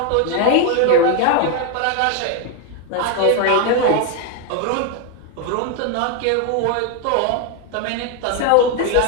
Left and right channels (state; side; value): different; both; correlation 0.01